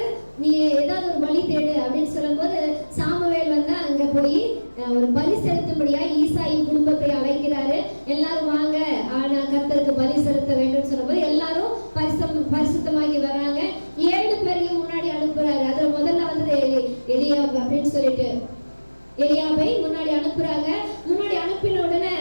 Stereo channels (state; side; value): inverted; both; correlation -1.00